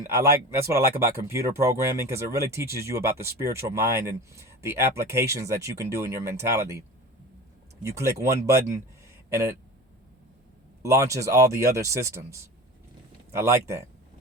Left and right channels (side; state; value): both; normal; correlation 0.33